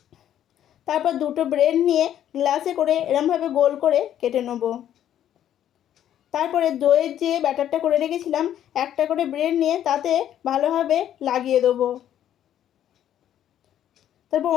তারপর দুটো ব্রেড নিয়ে গ্লাসে করে এরমভাবে গোল করে কেটে নেব। তারপরে দইয়ের যে ব্যাটারটা করে রেখেছিলাম একটা করে ব্রেড নিয়ে তাতে ভালোভাবে লাগিয়ে দেবো। তারপর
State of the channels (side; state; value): right; quieter; 10.9 dB